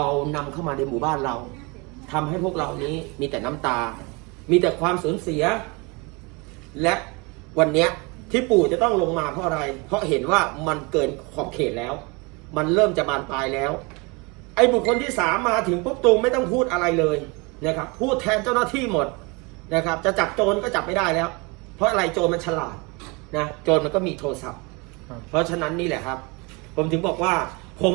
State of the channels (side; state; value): left; quieter; 28.3 dB